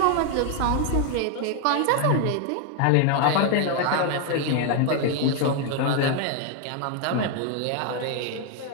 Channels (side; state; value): both; different; correlation 0.01